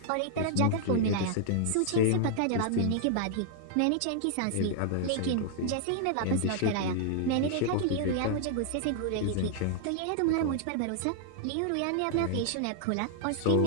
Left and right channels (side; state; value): both; different; correlation 0.00